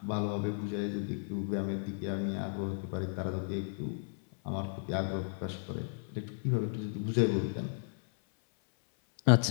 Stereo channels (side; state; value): right; silent; 55 dB below the other